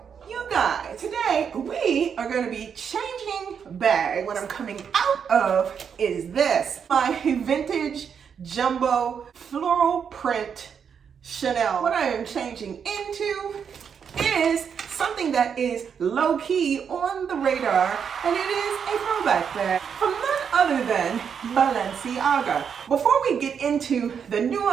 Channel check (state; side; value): quieter; left; 7.2 dB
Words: You guys, today we are going to be changing bags. What I'm coming out of is this, my vintage jumbo floral print Chanel. What I am changing into is something that is low-key on the radar, and it is a throwback bag from none other than Balenciaga. Before we get into the